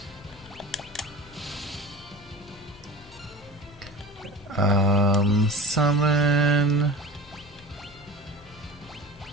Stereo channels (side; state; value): both; normal; correlation 0.33